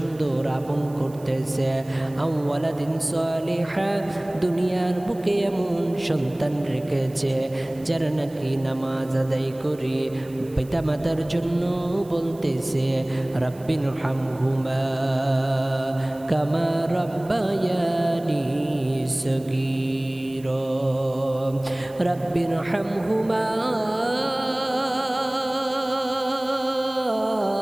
আপন করতেছে। আও ওয়ালাদিন সালিহা, দুনিয়ার বুকে এমন সন্তান রেখেছে যারা নাকি নামাজ আদায় করে পিতামাতার জন্য বলতেছে, রাব্বির হামহুমা কামা রাব্বায়ানি সগীরা, রাব্বির হামহুমা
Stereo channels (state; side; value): noise; right; hiss, 25 dB below the sound